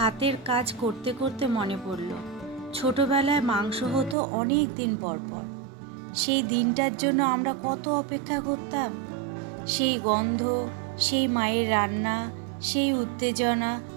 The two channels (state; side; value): drops out; left; at 4.2 s